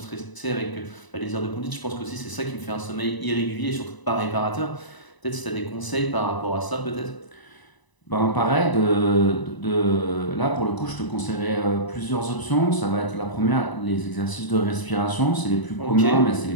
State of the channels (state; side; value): late; right; 1.0 ms